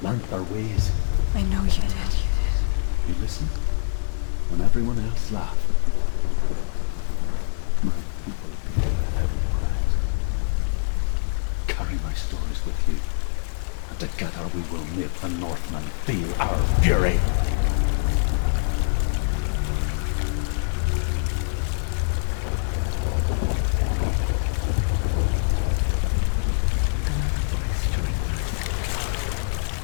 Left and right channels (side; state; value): right; silent; digital silence